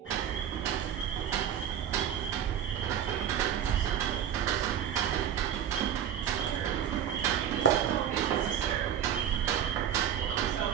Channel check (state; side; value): quieter; left; 9.5 dB